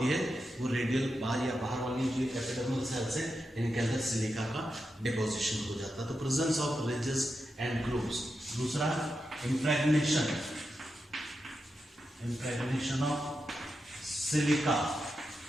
है वो रेडियल बाहर या बाहर वाली जो एपिडर्मल सेल्स है इनके अंदर सिलिका का डिपोजिशन हो जाता है। तो presence of ridges and grooves. दूसरा इम्प्रेग्नेशन, इम्प्रेग्नेशन ऑफ सिलिका,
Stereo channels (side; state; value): both; normal; correlation 0.88